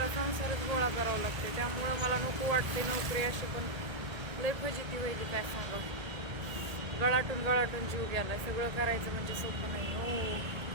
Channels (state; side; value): late; left; 1.8 ms